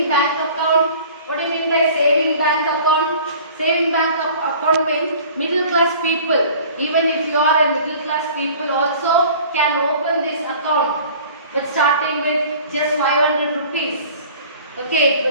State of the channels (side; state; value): both; inverted; correlation -0.46